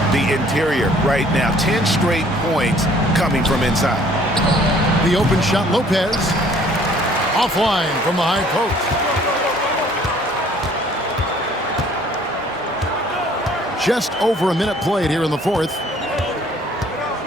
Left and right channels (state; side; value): normal; both; correlation 0.57